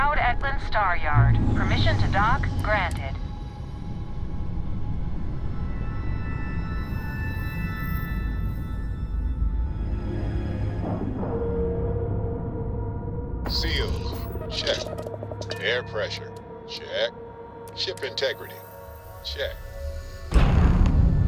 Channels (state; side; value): identical; both; correlation 1.00